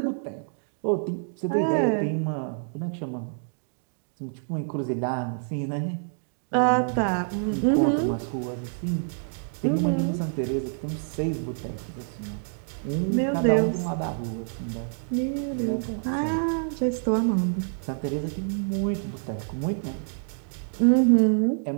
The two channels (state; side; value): silent; left; digital silence